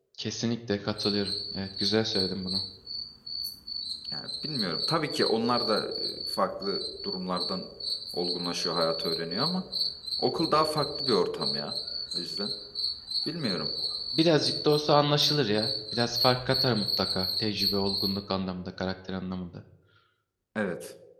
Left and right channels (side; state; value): both; identical; correlation 1.00